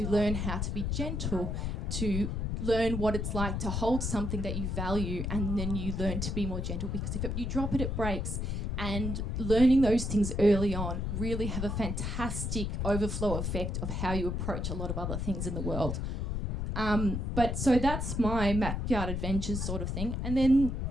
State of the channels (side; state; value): left; noise; rumble, 2 dB below the sound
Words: learn how to be gentle, to learn what it's like to hold something that you value, and then you learn to be more gentle, because if you drop it, it breaks. And learning those things early on really have a fantastic overflow effect of how you approach a lot of other things in the world. But so that's my backyard adventures sort of thing, and then